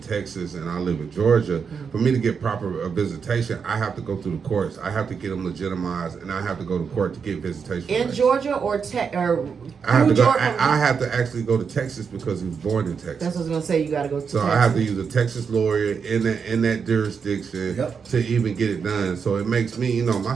and I live in Georgia, for me to get proper visitation, I have to go through the courts. I have to get them legitimized, and I have to go to court to get visitation. In rights. Georgia or I have to go. Georgia? I have to actually go to Texas because he was born in Texas. That's what I was gonna say. You gotta go to So Texas. I have to use a Texas lawyer in that jurisdiction Yep. to even get it done. So it makes me, my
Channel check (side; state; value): left; quieter; 6.1 dB